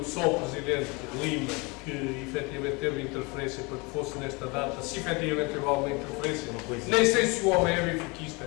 só o Presidente Lima que efetivamente teve interferência para que fosse nesta data, se efetivamente teve alguma interferência, nem sei se o homem é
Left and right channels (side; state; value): right; quieter; 27.8 dB